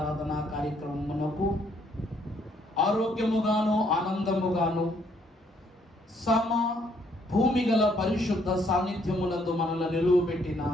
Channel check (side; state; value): both; normal; correlation 0.68